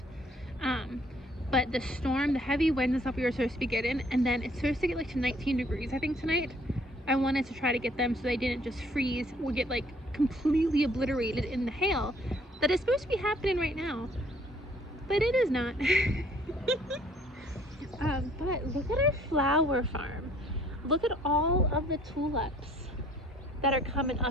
But the storm, the heavy wind and stuff we were supposed to be getting, and then it's supposed to get like to 19 degrees, I think, tonight. I wanted to try to get them so they didn't just freeze or get like completely obliterated in the hail that is supposed to be happening right now. But it is not. But look at our flower farm. Look at all of the tulips that are coming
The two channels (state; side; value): normal; both; correlation 0.60